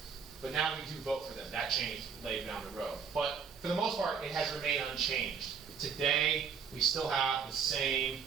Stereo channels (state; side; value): quieter; left; 6.4 dB